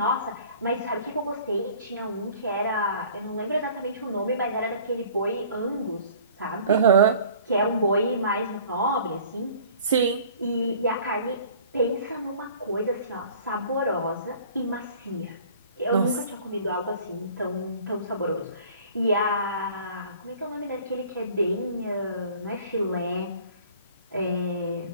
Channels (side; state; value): both; inverted; correlation -0.50